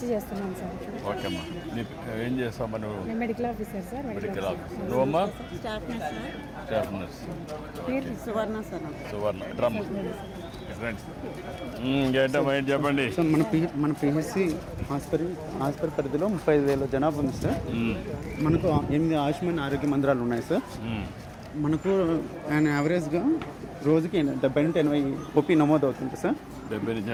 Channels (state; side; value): identical; both; correlation 1.00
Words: చేస్తున్నాం సార్. ఓకే అమ్మా. ఏం చేస్తావు నువ్వు? నేను medical officer sir. Medical officer. నువ్వమ్మా? Staff nurse. పేరు Suvarna sir. Suvarna drum friends. ఏంటమ్మా ఏంటి చెప్పండి. సార్ మన పిహెచ్సి హాస్పిటల్ పరిధిలో 35,000 జనాభా ఉంది సార్. మనకు 8 ఆయుష్మాన్ ఆరోగ్య మందిరాలు ఉన్నాయి సార్. మనకు యావరేజ్గా రోజుకి 70 నుండి 80 ఓపీ నమోదు అవుతుంది సార్. 70